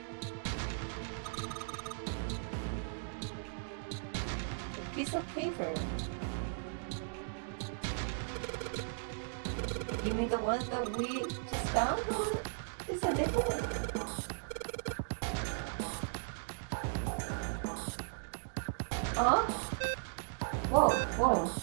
a piece of paper. You mean the one that we just found? Is that different? Huh? Whoa, whoa,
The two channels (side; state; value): left; silent; digital silence